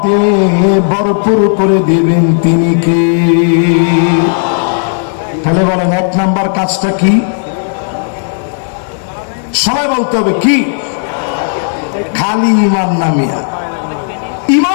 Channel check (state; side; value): silent; right; digital silence